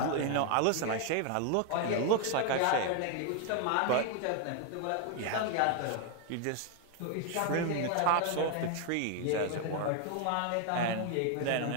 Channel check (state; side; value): different; both; correlation 0.01